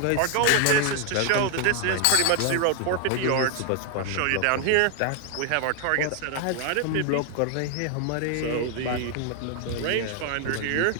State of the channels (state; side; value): different; both; correlation 0.00